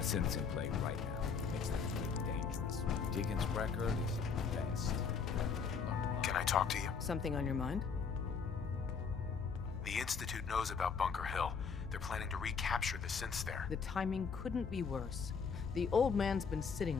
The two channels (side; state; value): right; quieter; 5.8 dB